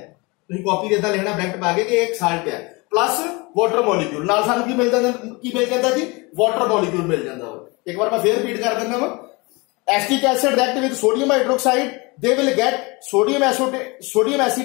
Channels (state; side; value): quieter; right; 26.2 dB